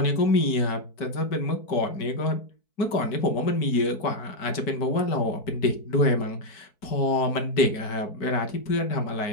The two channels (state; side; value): late; right; 4.6 ms